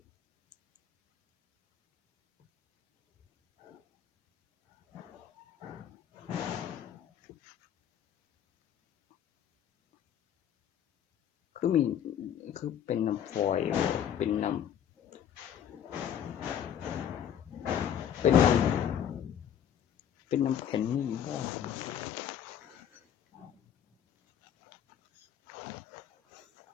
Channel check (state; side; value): quieter; right; 9.4 dB